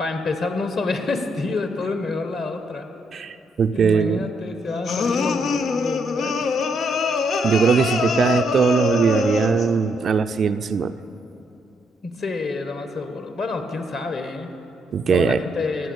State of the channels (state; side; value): normal; both; correlation 0.75